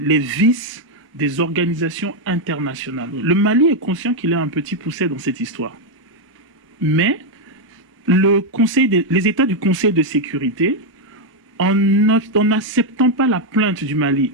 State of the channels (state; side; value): normal; both; correlation 0.01